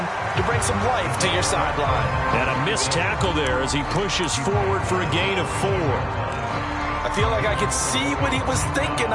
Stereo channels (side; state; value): both; identical; correlation 1.00